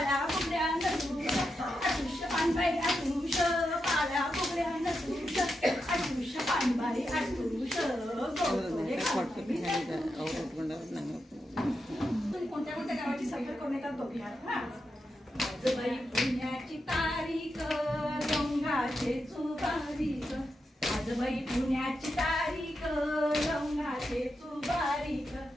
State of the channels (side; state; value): both; normal; correlation 0.87